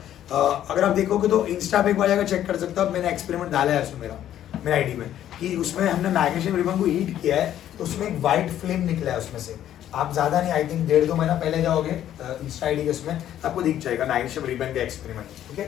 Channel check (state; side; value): quieter; right; 11.4 dB